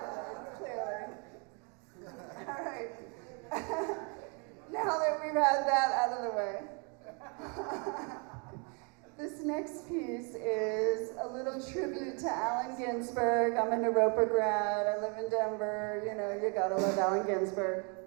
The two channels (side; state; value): left; quieter; 35.4 dB